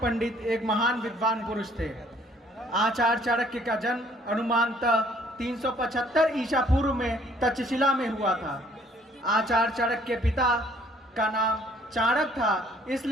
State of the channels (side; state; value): both; normal; correlation 0.60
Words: एक महान विद्वान पुरुष थे। आचार्य चाणक्य का जन्म अनुमानतः 375 ईसा पूर्व में तक्षशिला में हुआ था। आचार्य चाणक्य के पिता का नाम चाणक्य था,